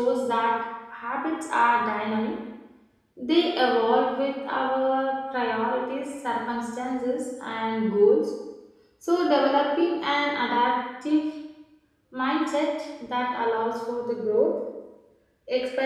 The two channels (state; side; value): identical; both; correlation 1.00